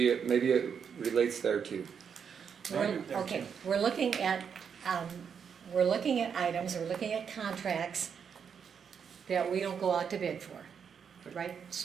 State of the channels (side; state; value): left; quieter; 7.0 dB